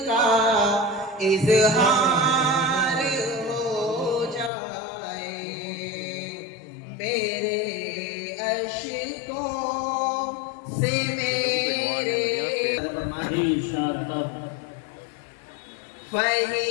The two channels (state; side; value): drops out; right; at 4.5 s